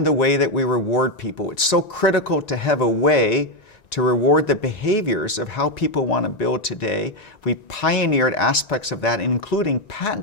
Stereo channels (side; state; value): right; late; 1.9 ms